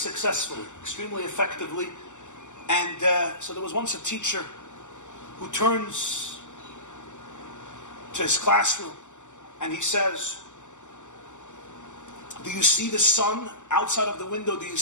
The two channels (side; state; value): right; late; 0.85 ms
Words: extremely effectively. And so there was once a teacher who turns to his classroom and he says, "Do you see the sun outside of the window? Do you